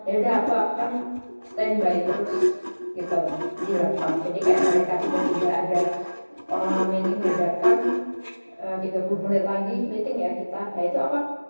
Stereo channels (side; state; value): both; inverted; correlation -1.00